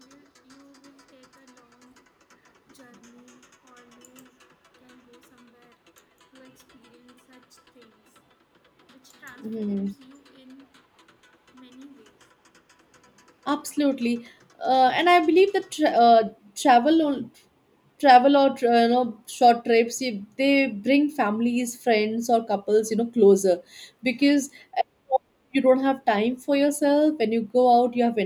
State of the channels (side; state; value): both; identical; correlation 1.00